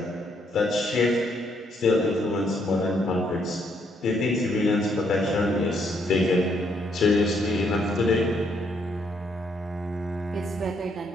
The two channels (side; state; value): both; normal; correlation 0.72